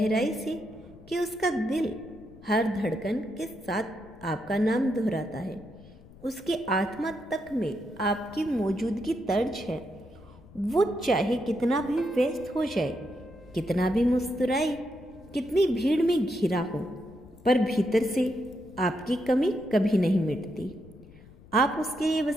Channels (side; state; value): left; noise; rumble, 22 dB below the sound